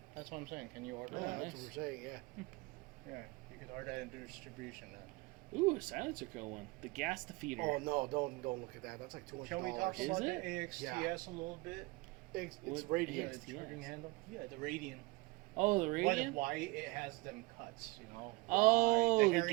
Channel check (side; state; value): left; quieter; 23.7 dB